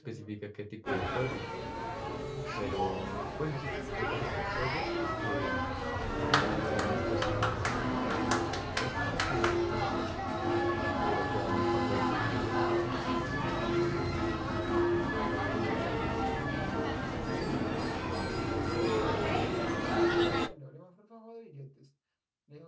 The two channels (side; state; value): both; identical; correlation 1.00